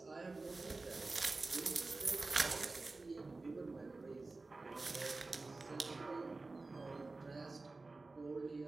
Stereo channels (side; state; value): left; quieter; 3.5 dB